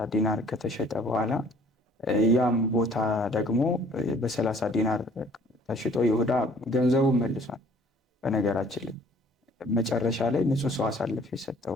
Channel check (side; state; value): both; normal; correlation 0.55